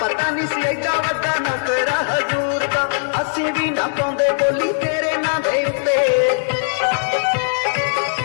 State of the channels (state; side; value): silent; right; digital silence